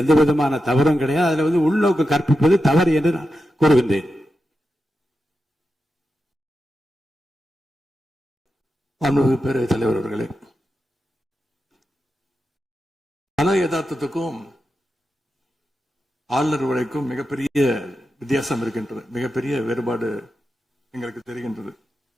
எந்த விதமான தவறும் கிடையாது. அதில் வந்து உள்நோக்கு கற்பிப்பது தவறு என்று நான் கூறுகின்றேன். பேரவைத் தலைவர் அவர்களே, கல யதார்த்தத்துக்கும் ஆளுநர் உரைக்கும் மிகப்பெரிய வித்தியாசம் இருக்கின்றது. மிகப்பெரிய வேறுபாடு எங்களுக்கு தெரிகின்றது.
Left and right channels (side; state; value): both; normal; correlation 0.89